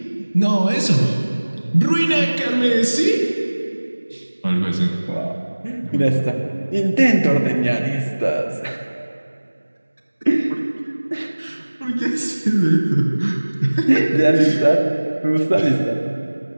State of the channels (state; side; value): inverted; both; correlation -1.00